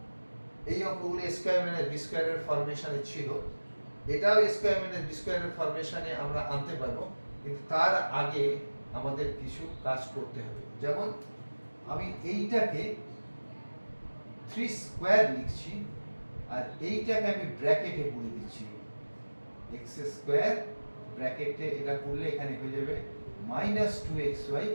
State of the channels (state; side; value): inverted; both; correlation -1.00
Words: এই অঙ্কগুলো স্কোয়ার মাইনাস বি স্কোয়ারের ফরমেশনে ছিল, এটাও স্কোয়ার মাইনাস বি স্কোয়ারের ফরমেশনে আমরা আনতে পারবো, কিন্তু তার আগে আমাদের কিছু কাজ করতে হবে। যেমন আমি এইটাকে 3 স্কোয়ার লিখছি, আর এইটাকে আমি ব্র্যাকেটে পুরে দিচ্ছি, এক্স স্কোয়ার ব্র্যাকেটে এটা করলে এখানে হয়ে যাবে মাইনাস 2xy,